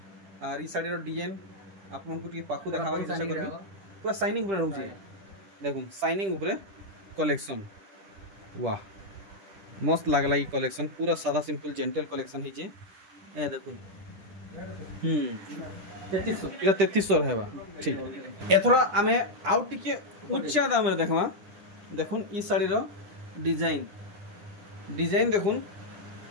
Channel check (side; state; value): left; late; 10 ms